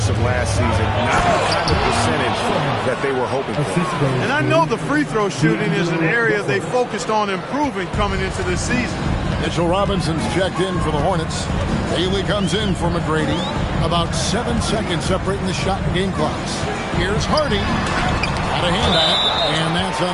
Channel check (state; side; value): identical; both; correlation 1.00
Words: of last season. Not the kind of percentage that they were hoping for. And I know the free throw shooting is an area they focused on improving coming into this season. Mitchell Robinson's checked in for the Hornets. Haley comes in for McGrady. About 7 seconds separating the shot and game clocks. Here's Hardy. Got a hand on it, and that's